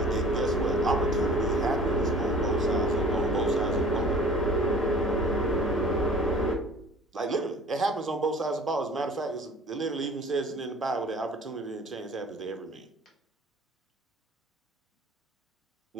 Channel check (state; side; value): normal; both; correlation 0.48